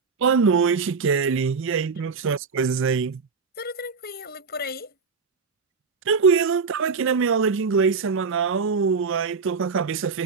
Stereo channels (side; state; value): left; quieter; 5.1 dB